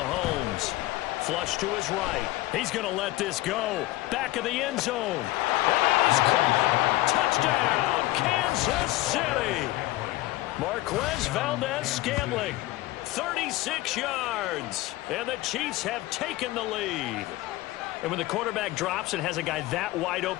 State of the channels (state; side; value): quieter; right; 17.8 dB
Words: Flush to his right. He's going to let this go. Back of the end zone. And that is caught. Touchdown, Kansas City. Marquez Valdez-Scantling. 36 yards, and the Chiefs have taken the lead. And when the quarterback drops and has a guy that wide